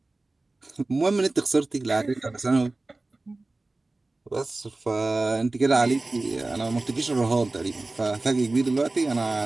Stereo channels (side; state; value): left; quieter; 3.1 dB